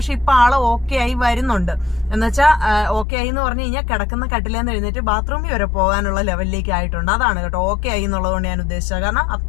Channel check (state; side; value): drops out; right; at 3.1 s